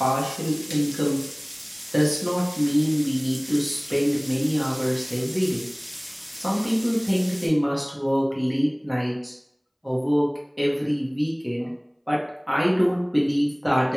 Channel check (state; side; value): identical; both; correlation 1.00